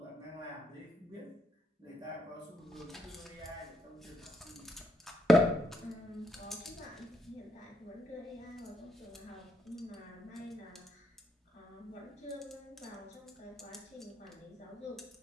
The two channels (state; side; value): normal; both; correlation 0.76